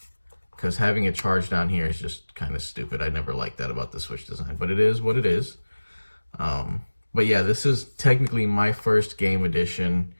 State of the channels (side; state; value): both; inverted; correlation -1.00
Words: because having it charged down here is just kind of stupid. I never liked that about the Switch design, but it is what it is. But yeah, this is technically my first game edition